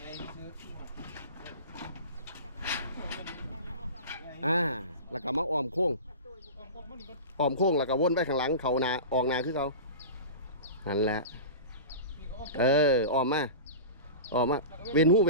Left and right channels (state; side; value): inverted; both; correlation -0.31